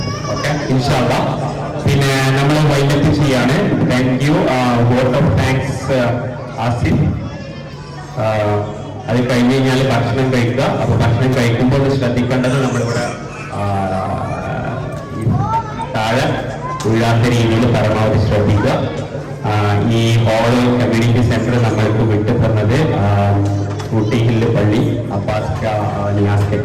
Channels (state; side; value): identical; both; correlation 1.00